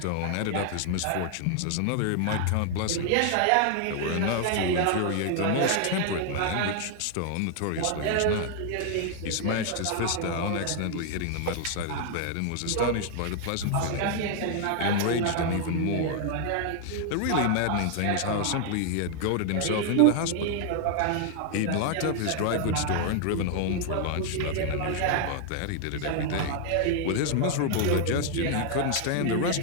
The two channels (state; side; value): different; both; correlation 0.00